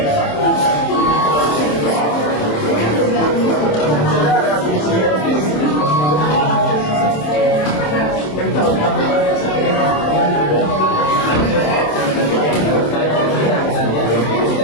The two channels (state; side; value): late; right; 27 ms